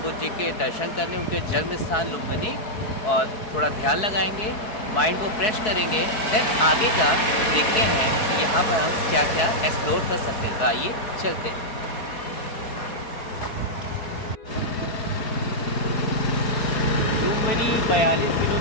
बुद्ध जी के दर्शन करने, उनके जन्म स्थान लुम्बिनी, और थोड़ा ध्यान लगाएंगे, माइंड को फ्रेश करेंगे। देन आगे का देखते हैं कि यहाँ पर हम क्या क्या एक्सप्लोर कर सकते हैं। तो आइए चलते हैं। Lumbini 42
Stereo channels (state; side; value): late; right; 4.6 ms